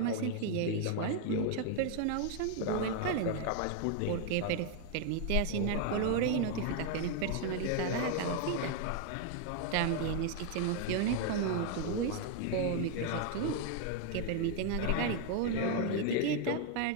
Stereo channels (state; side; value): different; both; correlation 0.00